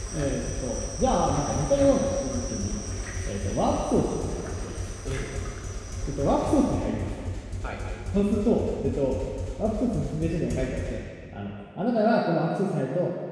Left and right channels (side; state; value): both; identical; correlation 1.00